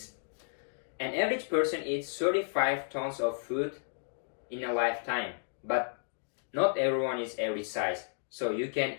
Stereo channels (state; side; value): silent; right; digital silence